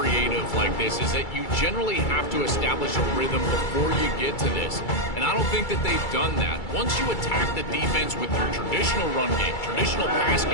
like this, is that you generally have to establish a rhythm before you get to this. And I don't think that they've done that. Once you attack the defense with your traditional run game, traditional pass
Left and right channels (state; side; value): late; right; 2.3 ms